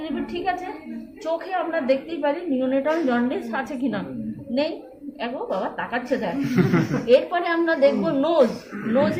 রিপিল, ঠিক আছে? চোখে আমরা দেখতেই পারি নিওনেটাল জন্ডিস আছে কিনা, নেই। এগো বাবা তাকাচ্ছে দেখ। এরপরে আমরা দেখবো নোজ।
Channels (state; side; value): identical; both; correlation 1.00